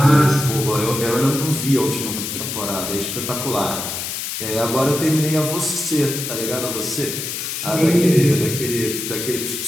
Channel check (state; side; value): noise; left; hiss, 5 dB below the sound